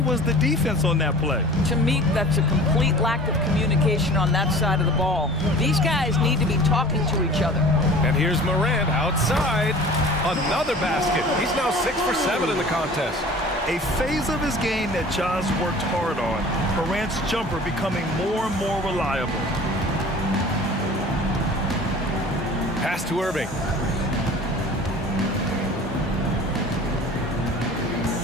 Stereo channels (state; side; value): normal; both; correlation 0.43